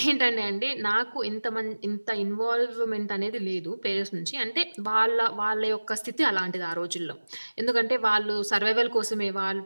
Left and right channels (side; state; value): both; inverted; correlation -1.00